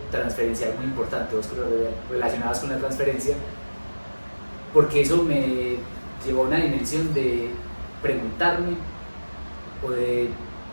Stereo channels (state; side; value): inverted; both; correlation -1.00